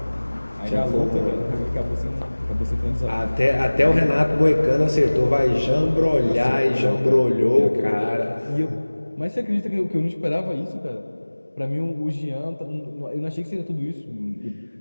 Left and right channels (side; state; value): both; inverted; correlation -1.00